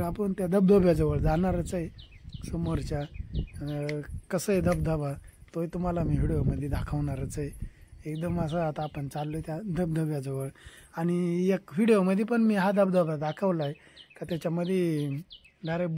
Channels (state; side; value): identical; both; correlation 1.00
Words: आपण त्या धबधब्याजवळ जाणारच आहे. समोरच्या कसं आहे धबधबा तोही तुम्हाला मी व्हिडिओमध्ये दाखवणारच आहे. एकदम असं आता आपण चाललोय त्या धबधब्याजवळ. आणि एक व्हिडिओमध्ये पण मी हा धबधबा दाखवला आहे का त्याच्यामध्ये डायरेक्ट